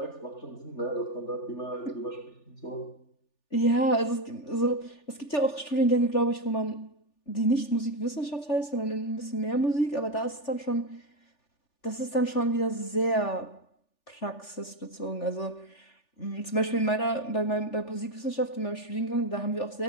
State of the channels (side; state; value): right; late; 3.4 ms